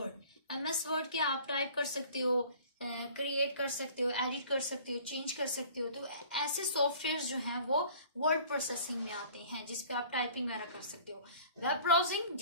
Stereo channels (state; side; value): inverted; both; correlation -0.48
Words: वर्ड के आप टाइप कर सकते हो, क्रिएट कर सकते हो, एडिट कर सकते हो, चेंज कर सकते हो। तो ऐसे सॉफ्टवेयर जो हैं वो वर्ड प्रोसेसिंग में आते हैं, जिसपे आप टाइपिंग वगैरह कर सकते हो। वेब ब्राउजिंग,